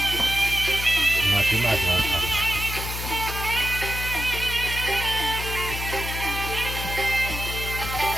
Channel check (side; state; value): left; noise; hum, 6 dB below the sound